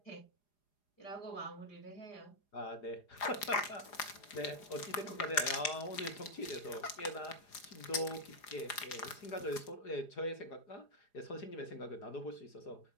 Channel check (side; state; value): right; late; 4.9 ms